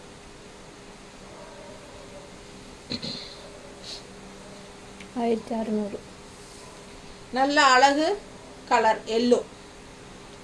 1600. நல்ல அழகு கலர் எல்லோ.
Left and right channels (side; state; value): both; identical; correlation 1.00